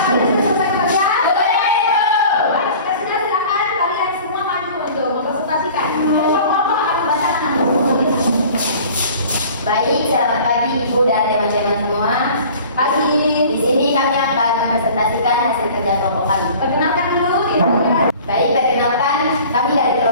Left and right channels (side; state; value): both; inverted; correlation -0.45